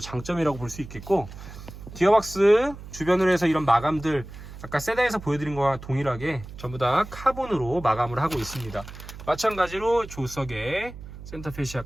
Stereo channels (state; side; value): noise; right; hum, 14 dB below the sound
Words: 장점이라고 볼 수 있겠고, 기어박스 주변으로 해서 이런 마감들 아까 세단에서 보여드린 거와 동일하게 전부 다 카본으로 마감을 하고 있습니다. 마찬가지로 조석의 센터